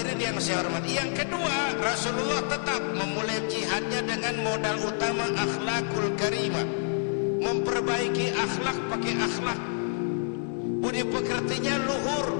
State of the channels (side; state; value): right; silent; 58 dB below the other